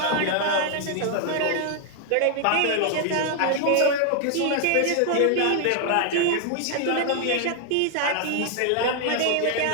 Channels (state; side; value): different; both; correlation 0.00